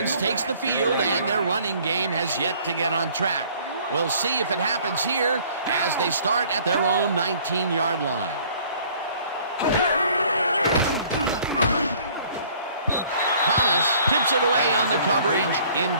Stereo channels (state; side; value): inverted; both; correlation -0.55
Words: takes the field, and their running game has yet to get on track. We'll see if it happens here as they start at their own 19-yard line. Thomas tips it away on the coverage,